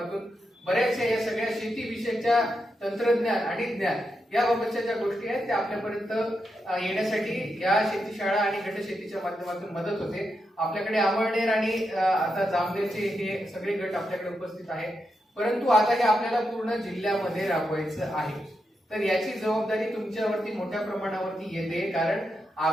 बऱ्याचशा या सगळ्या शेतीविषयीच्या तंत्रज्ञान आणि ज्ञान याबाबतच्या ज्या गोष्टी आहेत त्या आपल्यापर्यंत येण्यासाठी या शेती शाळा आणि गट शेतीच्या माध्यमातून मदत होते. आपल्याकडे अमळनेर आणि आता जामनेरचे हे सगळे गट आपल्याकडे उपस्थित आहेत. परंतु आता हे आपल्याला पूर्ण जिल्ह्यामध्ये राबवायचं आहे. तर याची जबाबदारी तुमच्यावरती मोठ्या प्रमाणावरती येते, कारण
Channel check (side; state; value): both; normal; correlation 0.85